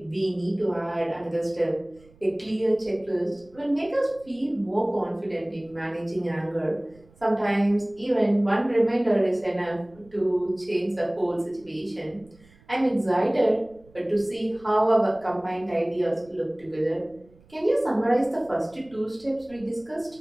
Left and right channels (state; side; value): noise; right; rumble, 28 dB below the sound